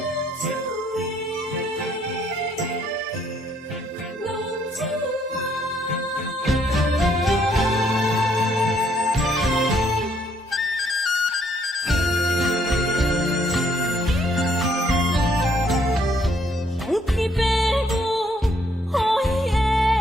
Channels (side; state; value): both; normal; correlation 0.68